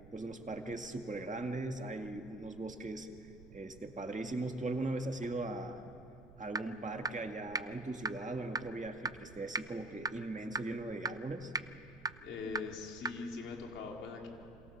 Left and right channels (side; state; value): right; noise; rumble, 17 dB below the sound